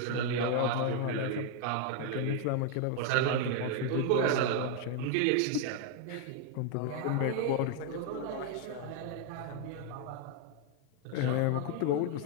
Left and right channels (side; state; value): both; different; correlation 0.00